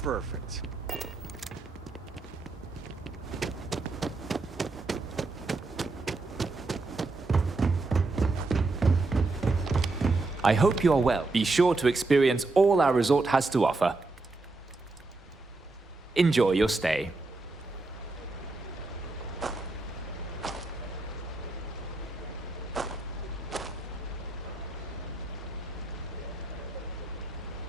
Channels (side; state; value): left; quieter; 3.4 dB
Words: I hope you are well. Be sure to experience all our resort has to offer. Enjoy your stay.